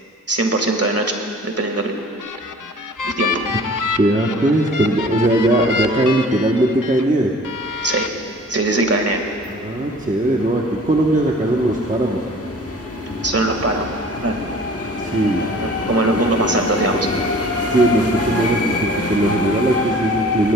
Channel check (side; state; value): both; normal; correlation 0.47